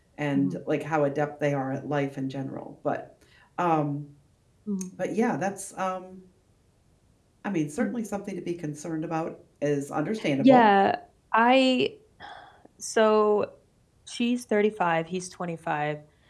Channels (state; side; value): identical; both; correlation 1.00